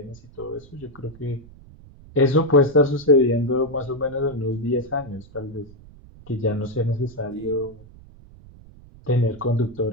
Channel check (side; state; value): right; noise; rumble, 21 dB below the sound